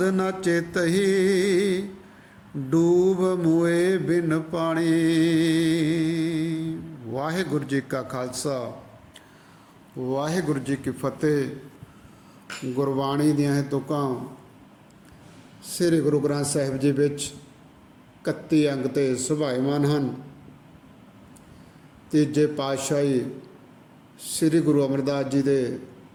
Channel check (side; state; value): both; identical; correlation 1.00